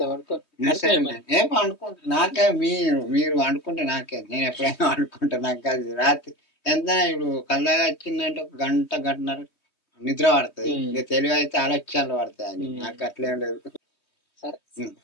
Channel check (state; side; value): late; right; 3.2 ms